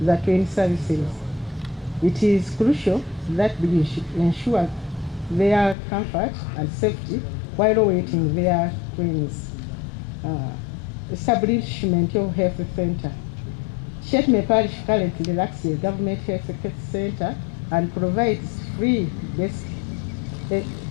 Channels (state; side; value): drops out; right; at 5.8 s